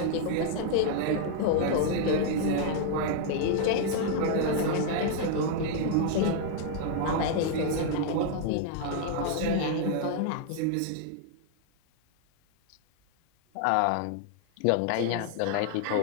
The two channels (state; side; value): different; both; correlation 0.00